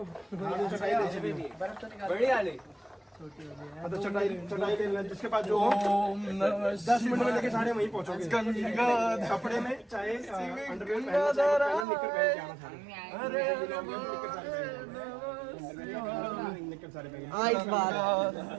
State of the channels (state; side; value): drops out; left; at 11.9 s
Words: चटाई ले चलिए। बढ़िया ले तो चटाई ले लेना जिसके पास जो हो। 10 मिनट में लेके सारे वहीं पहुँचोगे। कपड़े में चाहे अंडरवेयर पहनना चाहे निकर पहन के आना सारे। निकर सारे पहन इस बार